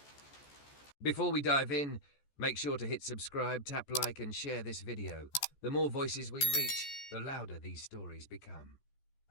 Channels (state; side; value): late; right; 14 ms